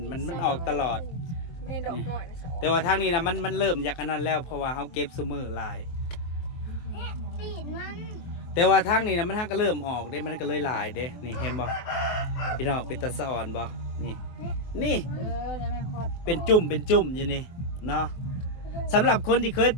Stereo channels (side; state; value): right; late; 23 ms